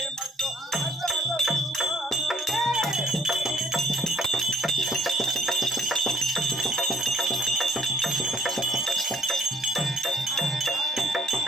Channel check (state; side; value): normal; both; correlation 0.60